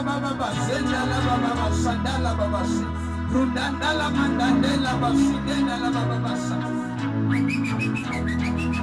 baba basenda la baba basandala baba si. Rundanda la mandandela basidena la baba basa.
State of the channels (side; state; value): both; identical; correlation 1.00